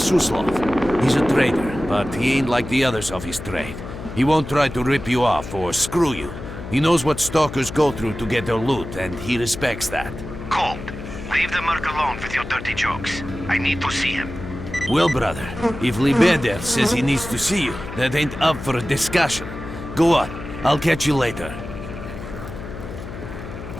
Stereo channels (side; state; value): left; noise; hum, 10 dB below the sound